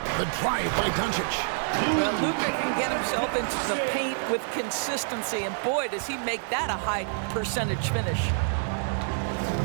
The drive by Doncic. Well, Luka can get himself into the paint with consistency, and boy, does he make that a high percentage finish.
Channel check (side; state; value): left; silent; 60 dB below the other